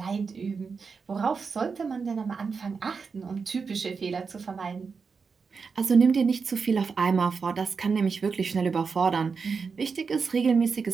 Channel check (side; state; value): left; quieter; 5.2 dB